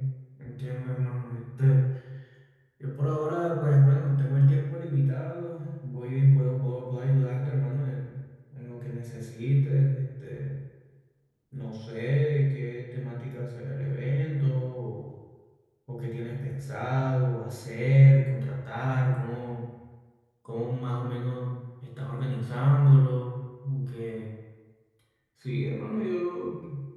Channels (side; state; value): both; identical; correlation 1.00